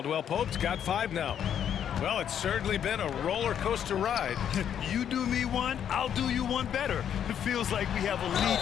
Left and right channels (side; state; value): right; quieter; 9.1 dB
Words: Pope's got 5 now. Well, it's certainly been a roller coaster ride. You do me one, I'll do you one better. It feels like we have a lead